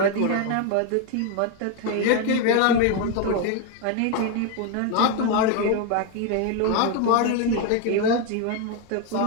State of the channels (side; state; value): both; different; correlation 0.01